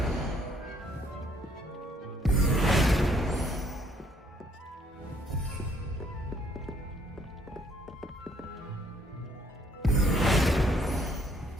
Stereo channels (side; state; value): both; normal; correlation 0.65